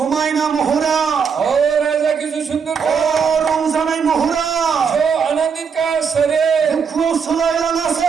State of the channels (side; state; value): left; quieter; 6.3 dB